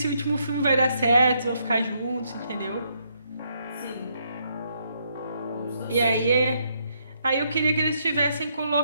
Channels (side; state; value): both; inverted; correlation -0.74